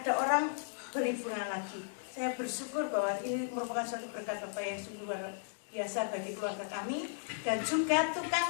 orang beli bunga lagi. Saya bersyukur bahwa ini merupakan suatu berkat Bapak yang sungguh luar biasa bagi keluarga kami. Dan juga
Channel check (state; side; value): silent; right; digital silence